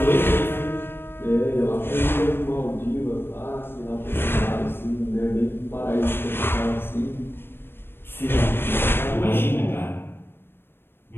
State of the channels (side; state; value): right; late; 0.10 ms